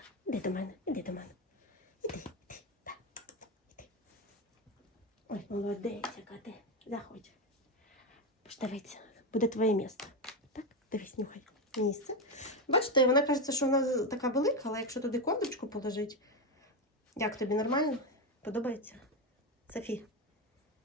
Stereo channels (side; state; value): both; normal; correlation 0.10